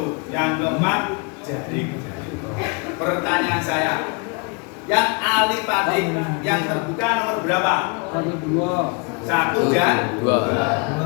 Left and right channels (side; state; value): right; quieter; 32.2 dB